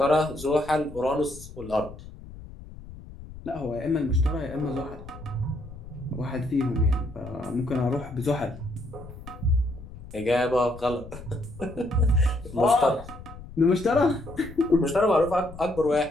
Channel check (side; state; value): left; noise; rumble, 15 dB below the sound